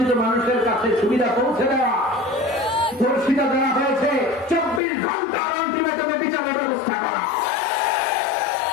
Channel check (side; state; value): right; drops out; at 4.8 s